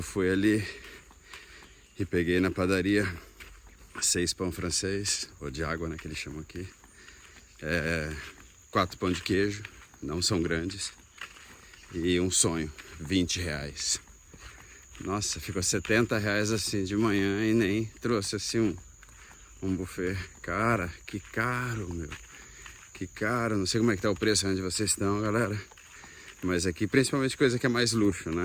ali e peguei na padaria 6 pão francês, ou de água, né, que eles chamam aqui. 4 pão de queijo, não são grandes. E um sonho, R$20. Nossa, ficou R$70 assim de manhã e nem trouxe assim um buffet. Cara, que caro, meu. Que caro, não sei como é que tá o preço onde vocês estão, galera. Mas aqui, principalmente coisa que é mais luxo,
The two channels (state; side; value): identical; both; correlation 1.00